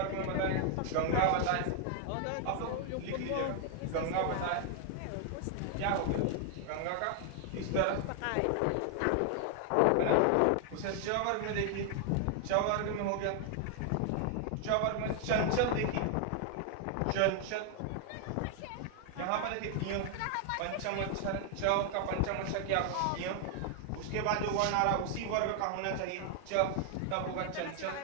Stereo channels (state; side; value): different; both; correlation 0.00